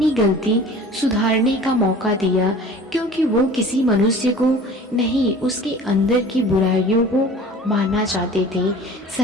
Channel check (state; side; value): normal; both; correlation 0.43